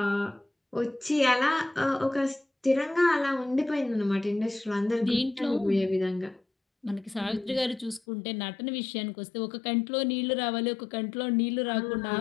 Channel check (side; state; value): right; drops out; at 8.0 s